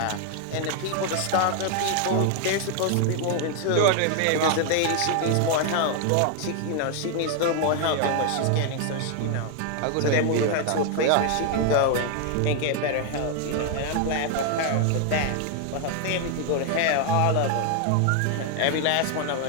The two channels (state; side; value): different; both; correlation 0.00